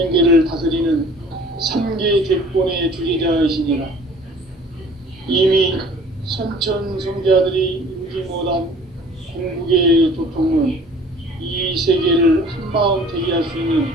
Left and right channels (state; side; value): normal; both; correlation 0.50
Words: 다스리는 3계 대권의 주제자이시니라. 이미 선천성자들이 이루지 못한 궁극의 도통은 이 세계를 한마음 되게 할 수 있는